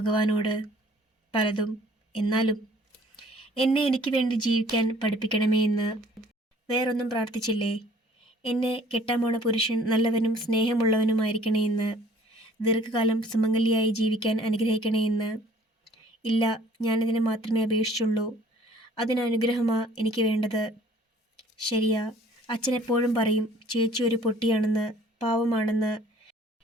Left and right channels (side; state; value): both; normal; correlation 0.55